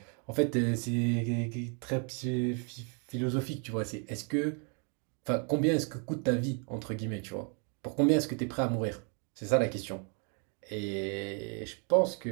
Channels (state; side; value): quieter; left; 39.2 dB